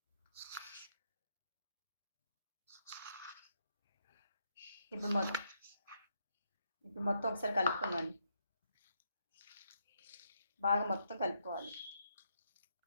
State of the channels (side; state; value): both; inverted; correlation -0.77